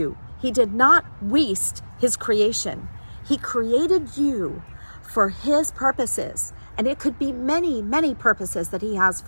He did not waste his creation. He created you for his purposes. And it could be many, many purposes that he has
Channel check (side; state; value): both; inverted; correlation -1.00